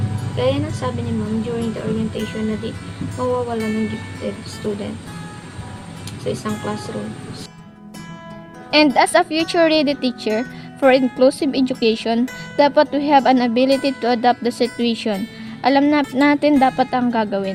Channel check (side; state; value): both; identical; correlation 1.00